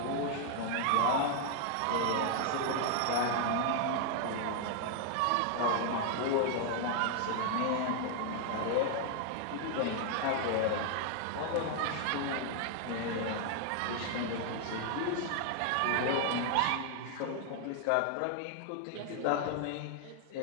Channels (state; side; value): different; both; correlation 0.00